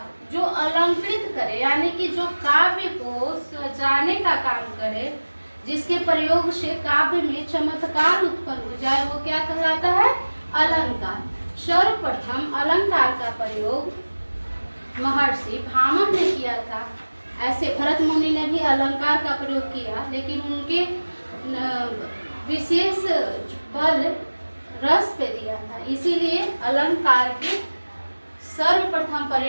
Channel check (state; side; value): inverted; both; correlation -1.00